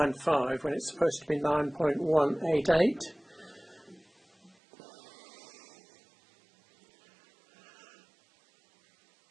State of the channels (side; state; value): left; drops out; at 4.5 s